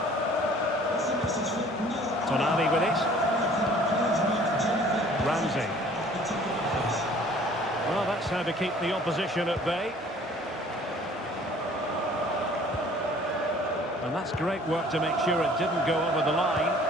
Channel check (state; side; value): normal; both; correlation 0.53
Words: Tonali with it. Ramsey. Well, that's how to keep the opposition at bay. And that's great work to make sure it didn't go over the line.